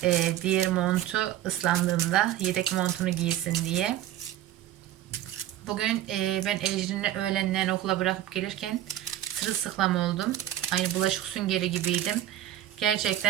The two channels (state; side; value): quieter; left; 12.9 dB